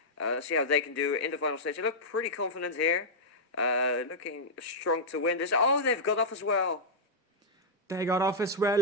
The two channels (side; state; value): both; normal; correlation -0.07